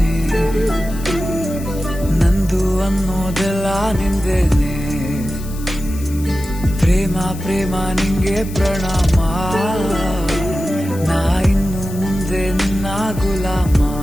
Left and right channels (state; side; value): noise; left; hiss, 17 dB below the sound